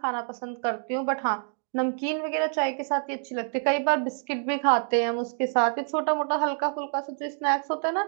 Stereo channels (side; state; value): left; silent; 60 dB below the other